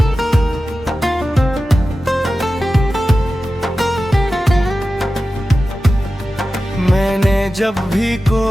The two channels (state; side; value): normal; both; correlation 0.94